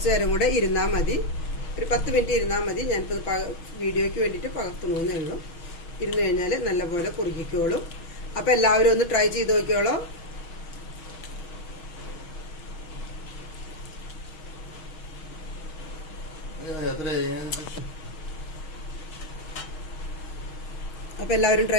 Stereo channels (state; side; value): late; right; 6.3 ms